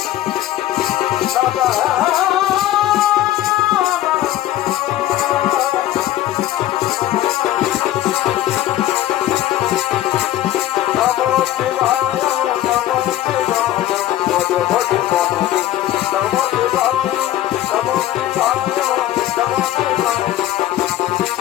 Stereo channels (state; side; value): quieter; right; 13.6 dB